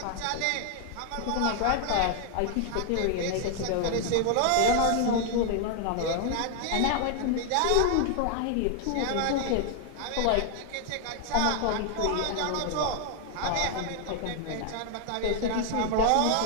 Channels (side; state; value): both; different; correlation 0.00